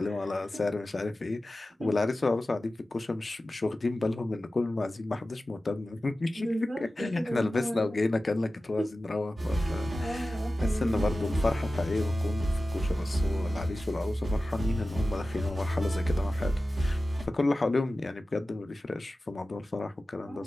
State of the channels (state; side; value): normal; both; correlation 0.95